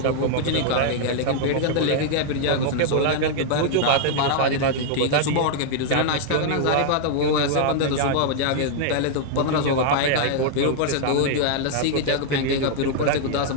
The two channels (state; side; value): different; both; correlation -0.01